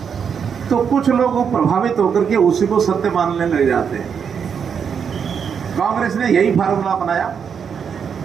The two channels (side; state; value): left; quieter; 7.0 dB